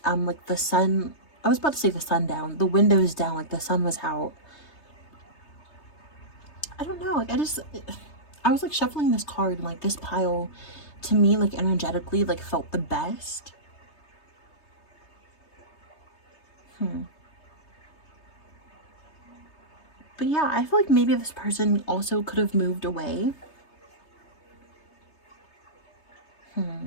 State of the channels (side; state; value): right; late; 3.3 ms